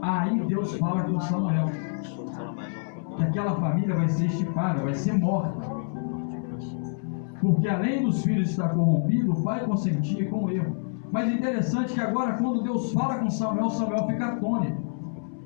Aí Deus fala com Samuel que aquela família vai ser estipada, vai ser morta, porque além dos filhos estar corrompido, o pai consentia com o erro. Mas interessante que agora, quando Deus fala com Samuel, Samuel fica atônito.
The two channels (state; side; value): silent; right; 60 dB below the other